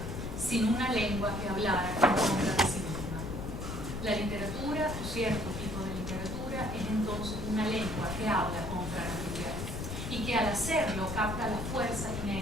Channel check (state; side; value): noise; left; rumble, 6 dB below the sound